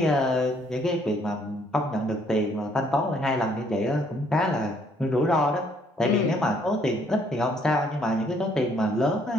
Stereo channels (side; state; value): both; normal; correlation 0.66